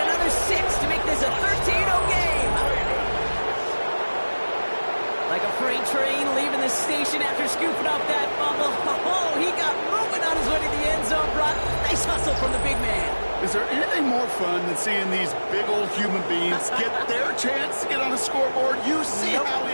6 to make this a 13-0 game. Like a freight train leaving the station after scooping up that fumble. Oh, he got moving on his way to the end zone, Brock. Nice hustle from the big man. Is there anything more fun than seeing these big old human beings get their chance to get on a scoreboard? You see how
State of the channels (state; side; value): inverted; both; correlation -1.00